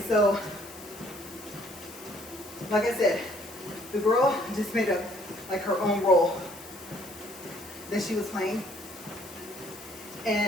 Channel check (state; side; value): noise; left; hiss, 17 dB below the sound